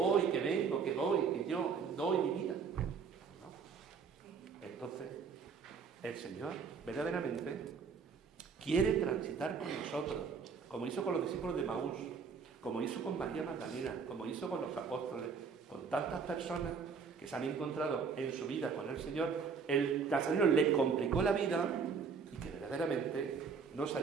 que vengo, que doy, que yo doy mi vida. Entonces, el Señor verdaderamente quiere transitar con nosotros, como hizo con los discípulos de Maús, como hizo con María Magdalena, como hizo con los apóstoles, con tantas personas que se han encontrado en su vida con el Señor. El Nazareno le complicó la vida y que verdaderamente nos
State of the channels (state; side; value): quieter; left; 5.7 dB